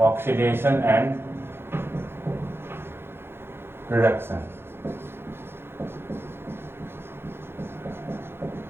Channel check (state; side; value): late; left; 0.11 ms